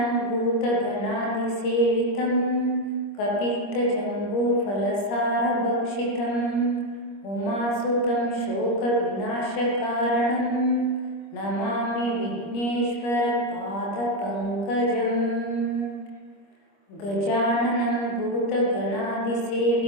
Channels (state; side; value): late; right; 25 ms